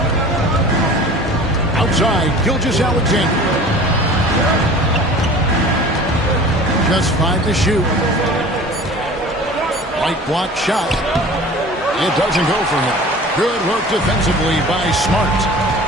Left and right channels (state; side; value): normal; both; correlation 0.42